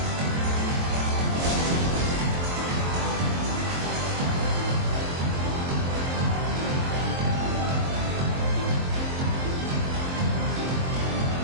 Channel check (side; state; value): left; late; 23 ms